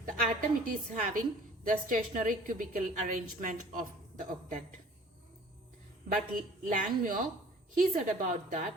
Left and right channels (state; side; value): normal; both; correlation 0.49